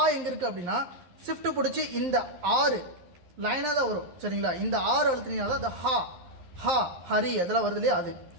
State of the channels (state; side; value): late; left; 11 ms